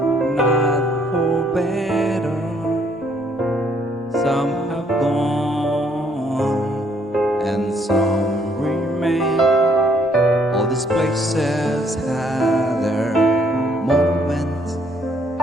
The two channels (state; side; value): normal; both; correlation 0.67